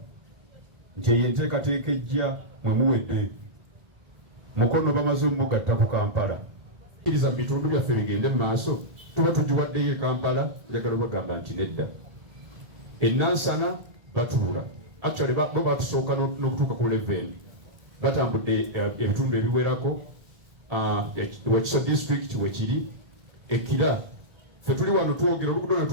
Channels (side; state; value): left; late; 1.8 ms